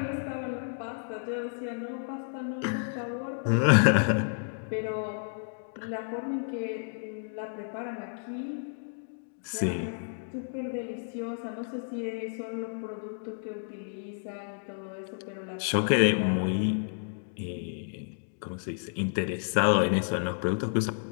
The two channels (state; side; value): silent; right; digital silence